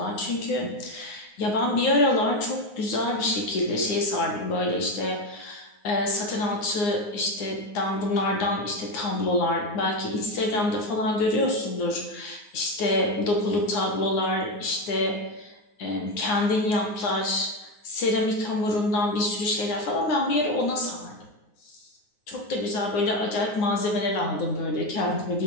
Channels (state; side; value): late; right; 9.5 ms